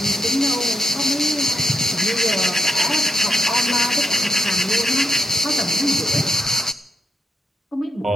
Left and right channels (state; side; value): normal; both; correlation 0.84